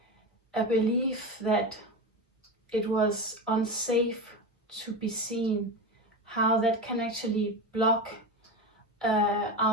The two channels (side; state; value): both; normal; correlation 0.21